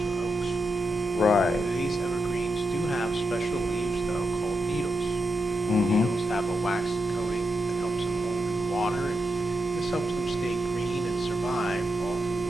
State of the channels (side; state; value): both; normal; correlation 0.85